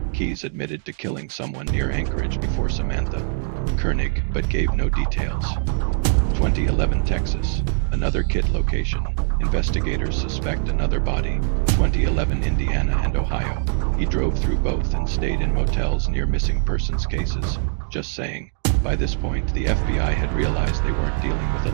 Keyes admitted to killing someone near Anchorage before Samantha Koenig, but gave no details. 2011 Texas. Another kit location. Investigators suspect another body. 2011 Indiana and Ohio. He drove through both and stayed in motels near missing persons cases. Just saying. By this point, the FBI had realized they weren't dealing with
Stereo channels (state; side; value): silent; left; digital silence